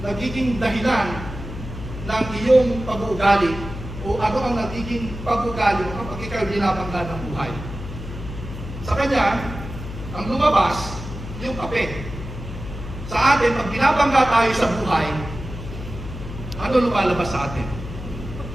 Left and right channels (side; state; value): left; noise; hum, 10 dB below the sound